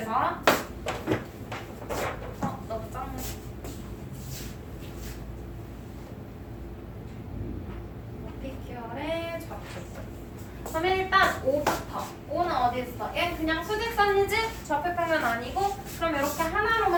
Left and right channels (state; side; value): identical; both; correlation 1.00